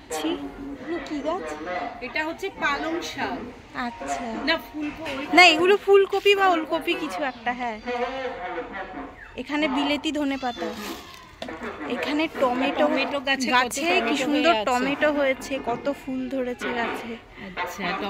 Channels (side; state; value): both; identical; correlation 1.00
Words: কি গাছ, এটা হচ্ছে পালং শাক। আচ্ছা, না ফুলকপি, না এগুলো ফুলকপি বা ওলকপি কিছু একটা। হ্যাঁ, এখানে বিলেতি ধনেপাতা, এখানে টমেটো গাছে কি সুন্দর টমেটো হয়েছে, কত ফুল ধরেছে গাছে। আচ্ছা,